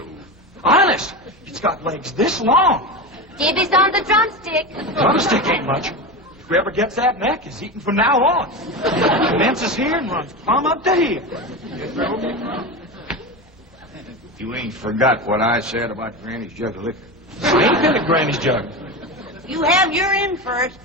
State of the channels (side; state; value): both; normal; correlation 0.22